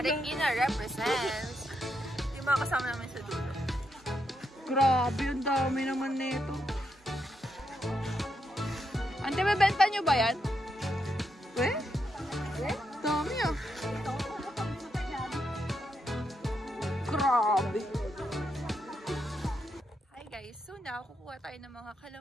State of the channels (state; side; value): normal; both; correlation 0.81